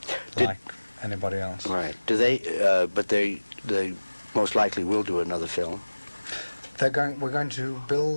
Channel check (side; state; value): both; inverted; correlation -1.00